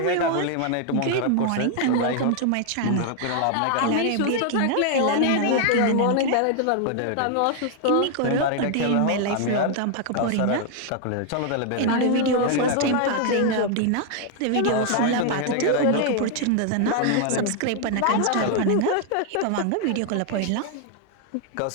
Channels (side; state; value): both; different; correlation 0.00